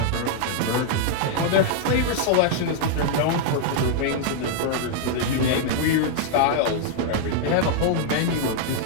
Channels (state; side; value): different; both; correlation -0.01